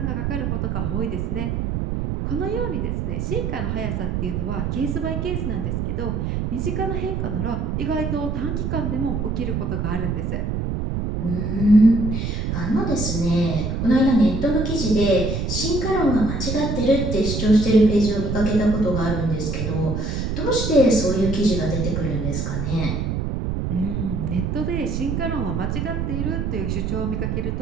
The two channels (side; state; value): right; noise; rumble, 1 dB below the sound